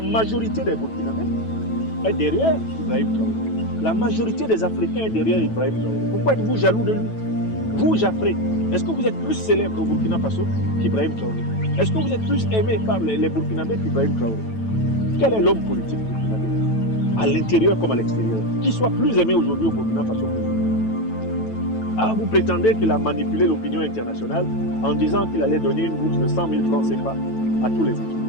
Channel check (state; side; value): late; right; 9.1 ms